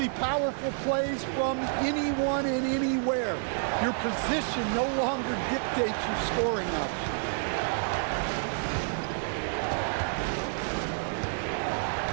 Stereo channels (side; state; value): left; silent; 58 dB below the other